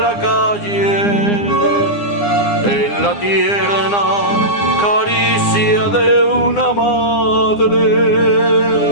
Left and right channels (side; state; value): right; late; 9.8 ms